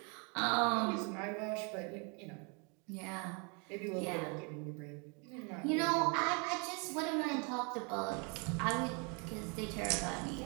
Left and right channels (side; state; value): left; quieter; 33.6 dB